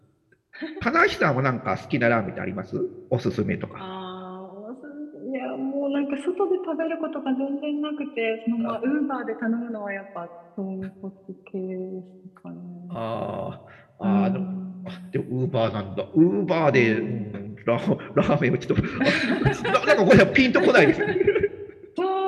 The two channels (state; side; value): identical; both; correlation 1.00